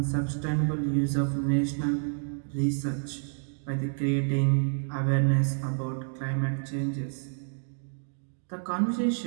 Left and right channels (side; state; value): left; silent; digital silence